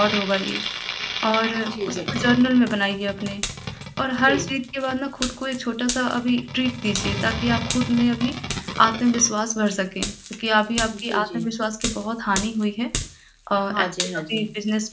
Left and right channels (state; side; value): identical; both; correlation 1.00